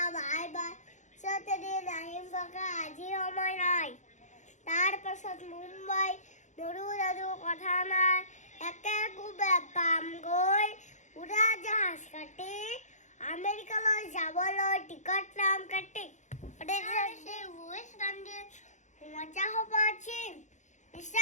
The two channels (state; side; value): late; right; 0.35 ms